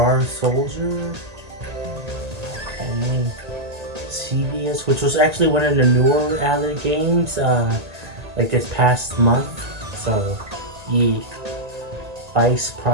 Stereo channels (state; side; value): late; left; 1.8 ms